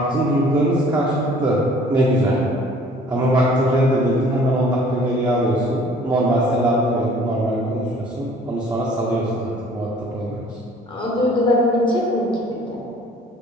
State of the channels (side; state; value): both; normal; correlation 0.53